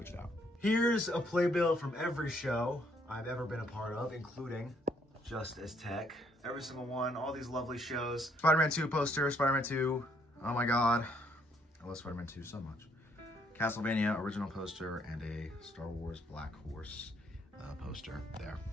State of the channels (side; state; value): both; normal; correlation 0.69